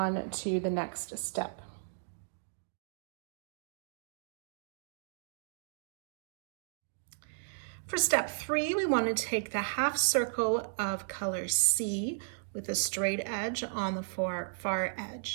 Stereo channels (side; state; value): left; silent; digital silence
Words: to the next step. For step 3, we want to take the half circle of color C with a straight edge on the far